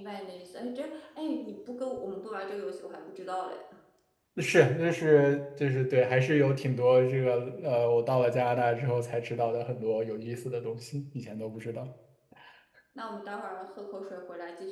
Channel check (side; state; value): both; identical; correlation 1.00